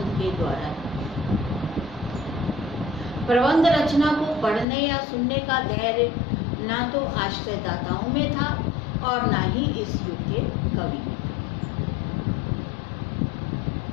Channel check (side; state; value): right; drops out; at 4.7 s